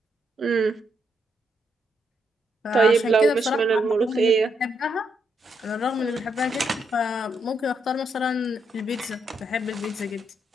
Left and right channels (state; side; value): normal; both; correlation 0.78